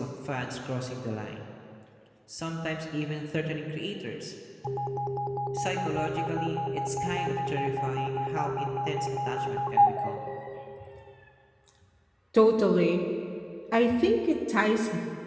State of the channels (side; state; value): both; identical; correlation 1.00